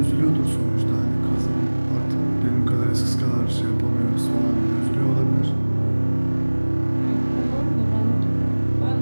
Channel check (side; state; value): both; inverted; correlation -1.00